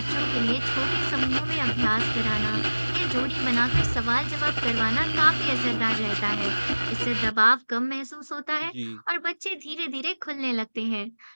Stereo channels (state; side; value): inverted; both; correlation -1.00